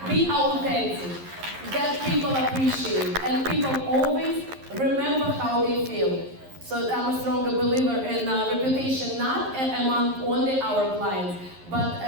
Be authentic. That people appreciate. And people always remember how they feel. So I'm a stronger believer in reputation, not among only our clients, but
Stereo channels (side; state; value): left; late; 11 ms